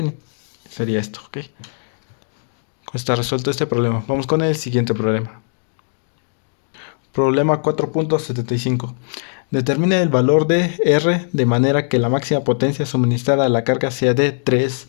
Sería esto, ¿ok? Está resuelto este problema. Vamos con el siguiente problema. Problema 4.75. Determina el valor de R de manera que la máxima potencia suministrada a la carga sea de 3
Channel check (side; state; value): right; silent; digital silence